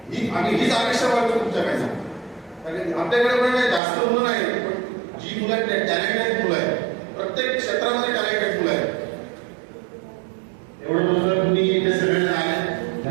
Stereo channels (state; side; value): drops out; left; at 3.8 s